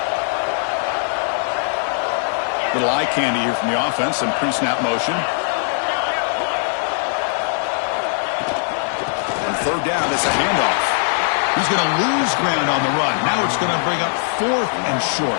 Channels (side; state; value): right; silent; digital silence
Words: Little eye candy here from the offense and pre-snap motion. On third down, it's a handoff. He's going to lose ground on the run. Now it's going to bring up 4th and short.